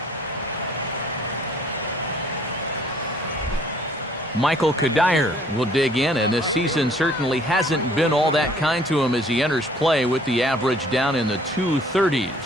Michael Kadire will dig in, and this season certainly hasn't been all that kind to him as he enters play with the average down in the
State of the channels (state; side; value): normal; both; correlation 0.58